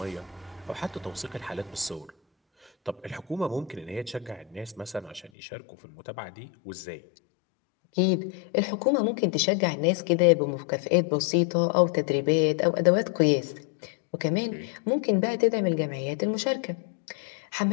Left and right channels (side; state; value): right; drops out; at 5.3 s